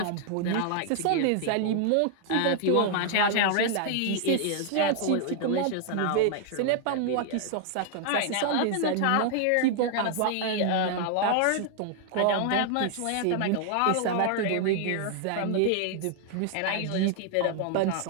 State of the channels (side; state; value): both; different; correlation 0.00